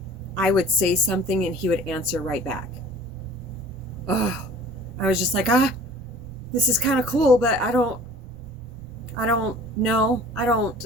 I would say something and he would answer right back. Oh, I was just like, this is kind of cool, but I don't know. I don't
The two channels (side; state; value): right; noise; rumble, 18 dB below the sound